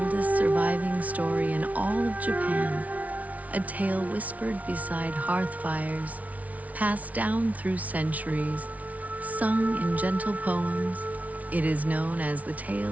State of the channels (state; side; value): late; left; 0.070 ms